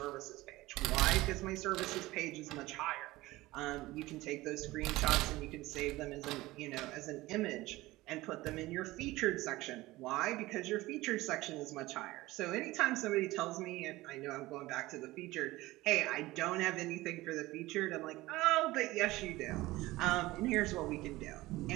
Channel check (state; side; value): quieter; left; 18.8 dB